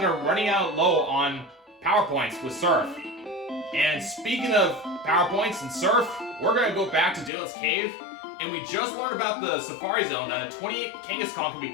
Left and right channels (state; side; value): drops out; right; at 7.3 s